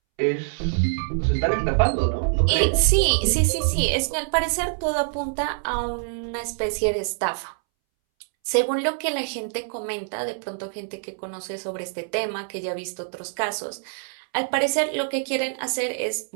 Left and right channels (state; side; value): silent; left; 62 dB below the other